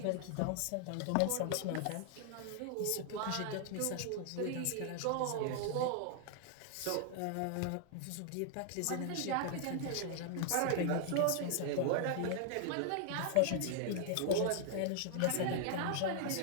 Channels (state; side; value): different; both; correlation 0.00